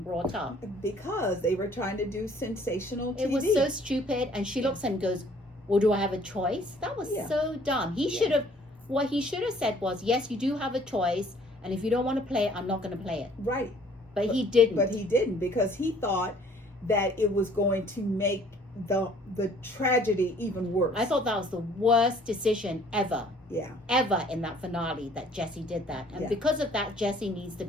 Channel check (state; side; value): normal; both; correlation 0.57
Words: up. Because they were trying to do sensational TV. It was so stupid. And she looks at him and goes, well, do I have a choice? That was so dumb. He should have, what he should have said was, yes, you do have a choice. And if you don't want to play it, I'm not going to play it. Right. But he didn't. But he didn't, because he thought that it was going to make the tragedy even worse. I thought that was the worst decision ever. Yeah. Ever in that finale that Jessie did that. And because of that, Jessie needs to